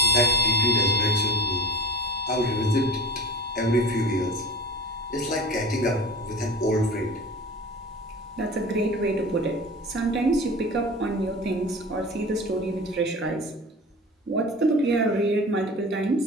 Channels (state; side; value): normal; both; correlation 0.35